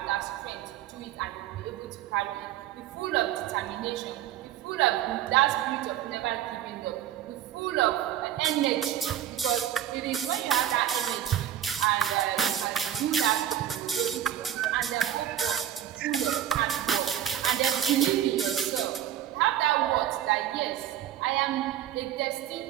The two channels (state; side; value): quieter; left; 11.2 dB